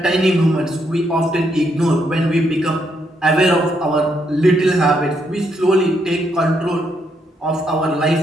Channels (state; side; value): normal; both; correlation 0.76